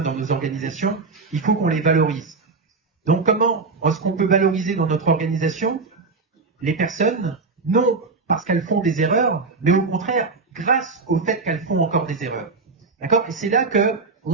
dans nos organisations, il faut qu'on les valorise. Donc comment est-ce qu'on peut valoriser dans notre organisation les personnes, non parce qu'elles font des erreurs, mais au contraire, grâce au fait qu'elles font encore des erreurs. D'accord? Et c'est là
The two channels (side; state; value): left; quieter; 4.2 dB